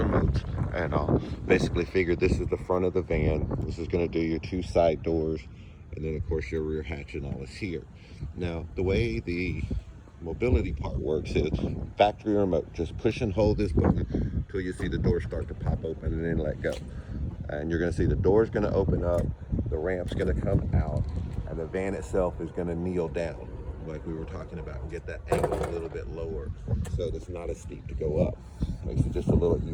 And I'll basically figured this is the front of the van. This is going to do your two side doors, and then of course your rear hatch and all is here. Now the way the mobility part works is factory remote. Just push and hold this button until you see the door start to pop open and then let go. And you're going to see the door's going to open up, the ramp's going to come out, and the van itself is going to kneel down like we were talking about and get that angle a little bit lower so it's not as steep to go up. Makes it just a little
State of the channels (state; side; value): identical; both; correlation 1.00